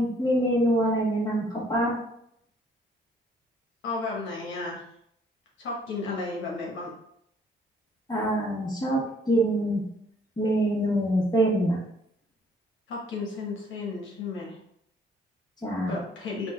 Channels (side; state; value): both; normal; correlation 0.62